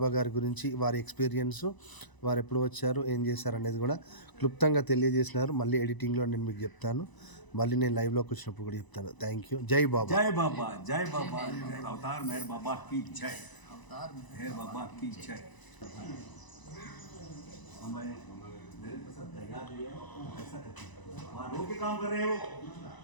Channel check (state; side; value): late; right; 1.0 ms